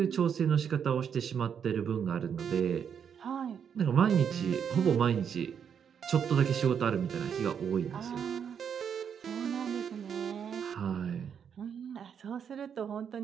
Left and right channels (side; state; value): left; quieter; 7.7 dB